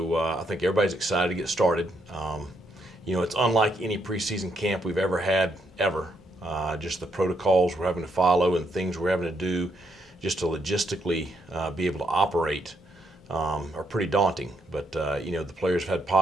I think everybody's excited to get started. It's unlike any preseason camp we've ever had ever. Just the protocols we're having to follow and things we're having to do just to logistically be able to operate are pretty daunting. But the players have had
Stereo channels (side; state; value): both; normal; correlation 0.76